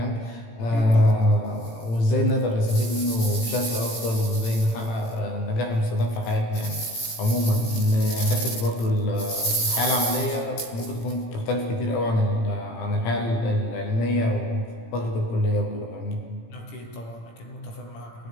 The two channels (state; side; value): late; right; 18 ms